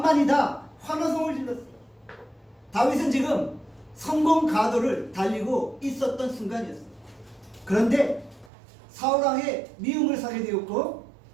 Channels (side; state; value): left; drops out; at 8.5 s